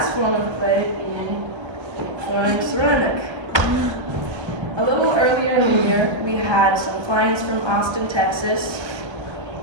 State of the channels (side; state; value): left; late; 1.3 ms